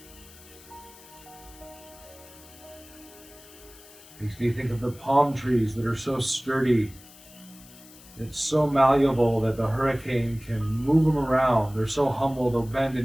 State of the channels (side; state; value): left; noise; hiss, 21 dB below the sound